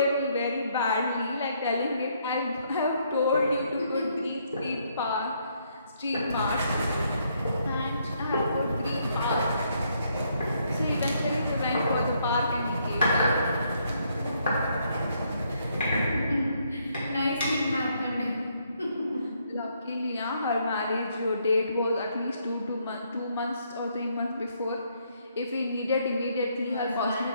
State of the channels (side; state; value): both; inverted; correlation -0.72